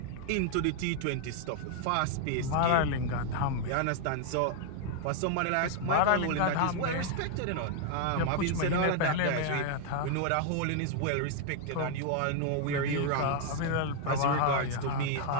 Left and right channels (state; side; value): different; both; correlation 0.00